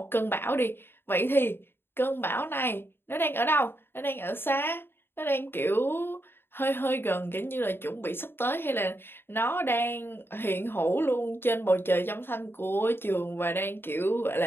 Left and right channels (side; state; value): right; late; 0.11 ms